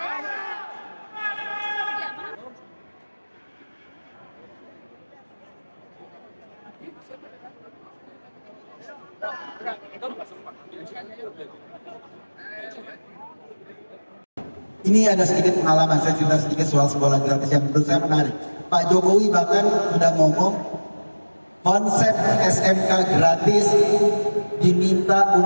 Ini ada sedikit pengalaman, saya cerita sedikit soal sekolah gratis yang menurut saya menarik. Pak Jokowi bahkan sudah ngomong konsep SMK gratis diminta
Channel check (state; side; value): inverted; both; correlation -1.00